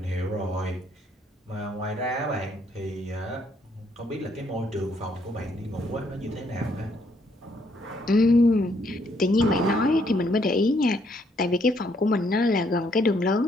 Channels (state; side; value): normal; both; correlation 0.70